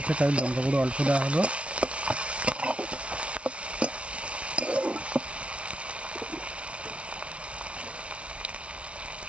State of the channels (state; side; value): late; left; 0.061 ms